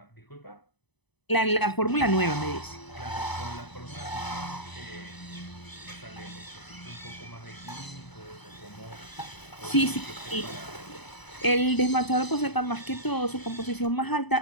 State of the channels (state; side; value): late; right; 0.99 ms